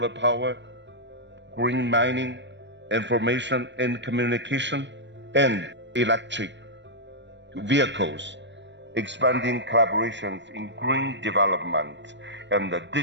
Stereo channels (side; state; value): left; late; 0.53 ms